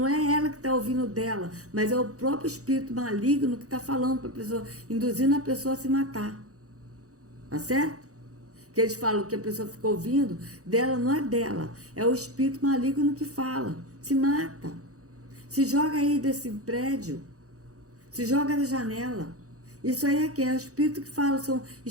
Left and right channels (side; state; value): left; late; 0.66 ms